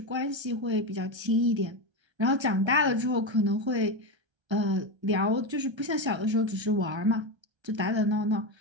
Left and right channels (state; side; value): late; left; 1.3 ms